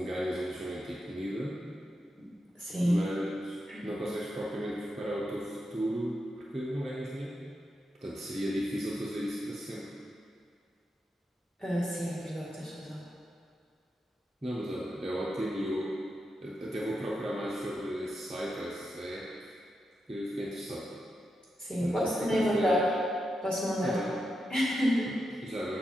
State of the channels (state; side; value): normal; both; correlation 0.86